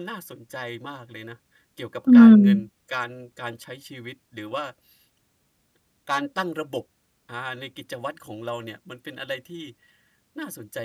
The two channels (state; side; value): identical; both; correlation 1.00